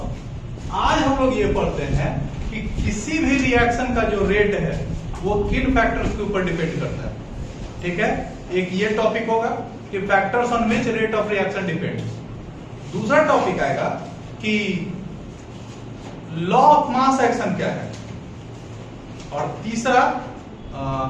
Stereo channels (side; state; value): both; identical; correlation 1.00